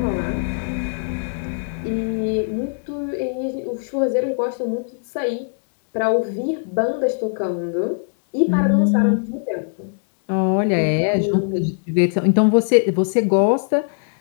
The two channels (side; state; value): right; silent; digital silence